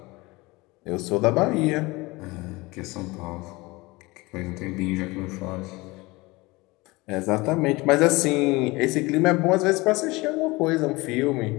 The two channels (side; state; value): right; quieter; 22.7 dB